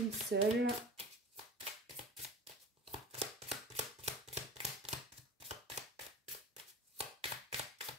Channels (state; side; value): normal; both; correlation 0.35